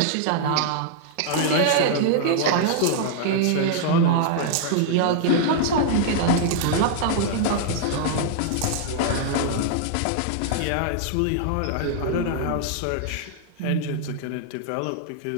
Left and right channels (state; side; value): different; both; correlation -0.01